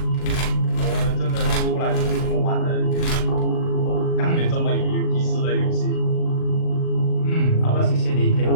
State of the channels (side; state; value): right; late; 39 ms